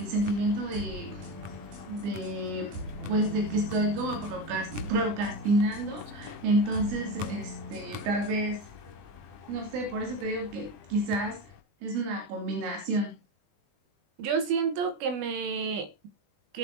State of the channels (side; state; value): left; late; 20 ms